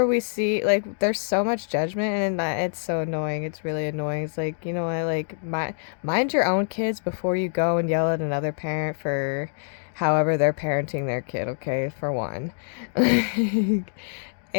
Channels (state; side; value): silent; right; digital silence